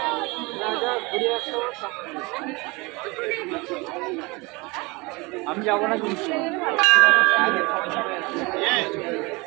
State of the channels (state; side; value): quieter; left; 25.7 dB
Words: আমি যাবো না কিন্তু।